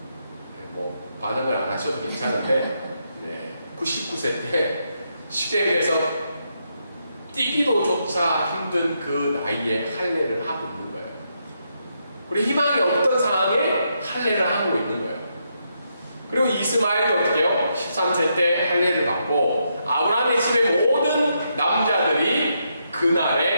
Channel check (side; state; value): both; inverted; correlation -0.80